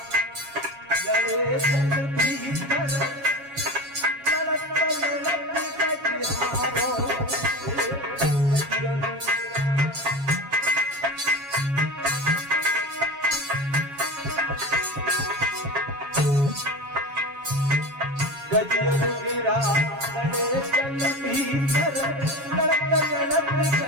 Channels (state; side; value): late; left; 7.2 ms